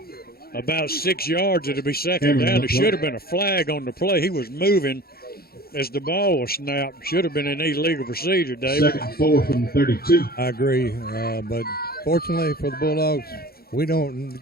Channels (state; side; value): late; right; 0.44 ms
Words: about 6 yards. It'll be second down. There should have been a flag on the play. He was moving as the ball was snapped. Should have been an illegal procedure, David. 2nd and 4 from the 32. I agree, but fortunately for the Bulldogs, we don't